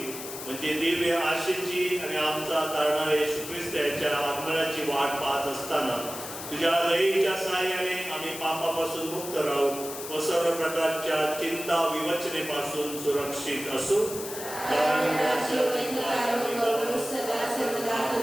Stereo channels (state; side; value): noise; left; hiss, 9 dB below the sound